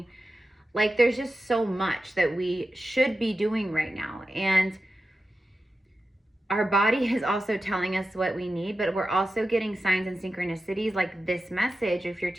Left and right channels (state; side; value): normal; both; correlation 0.92